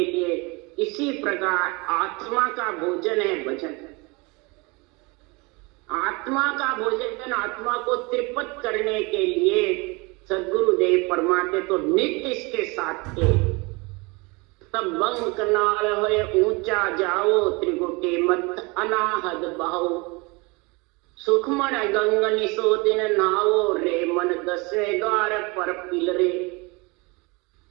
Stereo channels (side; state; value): left; quieter; 27.0 dB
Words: लिए, इसी प्रकार आत्मा का भोजन है भजन। आत्मा का भोजन आत्मा को त्रिपत करने के लिए सदगुरुदेव फरमाते तो नित्य इसके साथ थे। तब बंग कनाल होए ऊंचा जाओ, त्रिगुटी मत अनाहद बहाओ, सुखमन गंग निसो दिन नाओ, रे मन दसवें द्वार पर पिलरे।